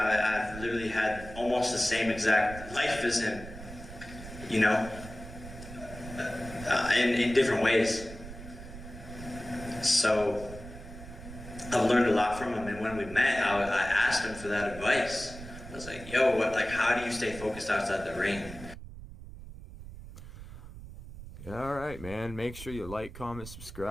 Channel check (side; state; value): right; noise; rumble, 13 dB below the sound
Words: literally had almost the same exact life as him, you know, in different ways. So I've learned a lot from him, and when we met, I asked him for that advice. I was like, yo, how do you stay focused outside the ring? All right, man. Make sure you like, comment,